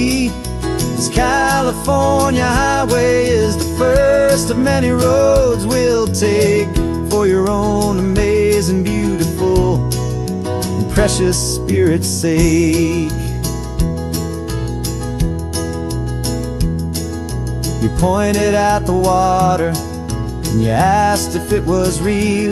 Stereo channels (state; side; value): identical; both; correlation 1.00